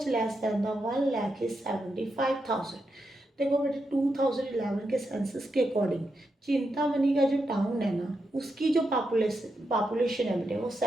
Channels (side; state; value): both; normal; correlation 0.85